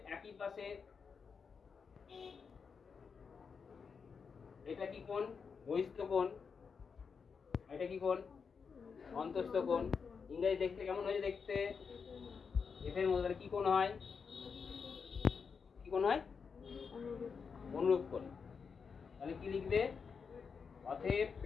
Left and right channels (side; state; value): right; quieter; 5.8 dB